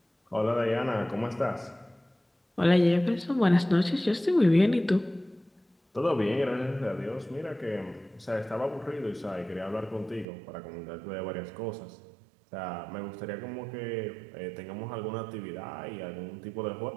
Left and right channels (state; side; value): drops out; left; at 10.2 s